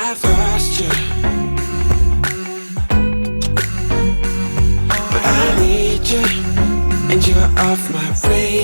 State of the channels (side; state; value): both; inverted; correlation -1.00